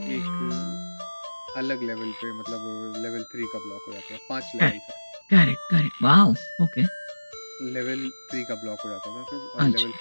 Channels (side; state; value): both; inverted; correlation -1.00